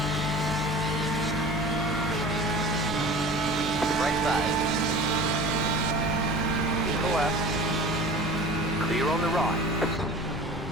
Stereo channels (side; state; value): both; normal; correlation 0.40